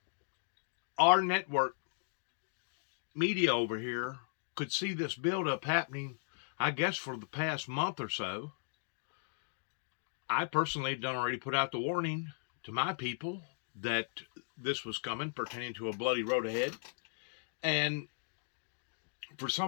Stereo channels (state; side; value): silent; right; digital silence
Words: our network media over here could see this buildup happening, I guess, for the past month or so. I personally had already put out the warning to my people that this was coming, pertaining to a bloody road ahead. And for